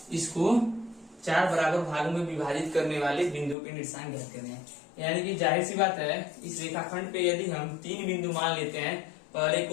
इसको 4 बराबर भागों में विभाजित करने वाले बिंदु के निर्देशांक ज्ञात करने हैं। यानी कि जाहिर सी बात है इस रेखाखंड पे यदि हम 3 बिंदु मान लेते हैं, पहले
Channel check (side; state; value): right; drops out; at 3.6 s